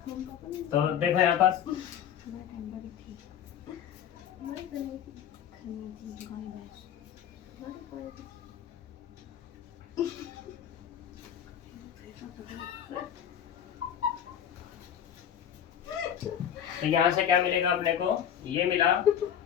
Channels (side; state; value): right; quieter; 9.3 dB